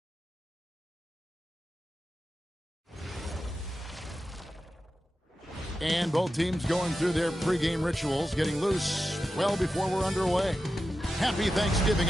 And both teams going through their pregame rituals, getting loose well before we're underway. Happy Thanksgiving,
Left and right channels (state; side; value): normal; both; correlation 0.91